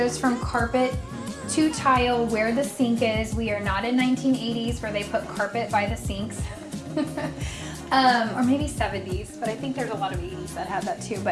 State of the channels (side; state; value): both; identical; correlation 1.00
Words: from carpet to tile where the sink is. We are not in 1980s where they put carpet by the sinks. Or maybe 70s, but I think there's a lot of 80s that had that too.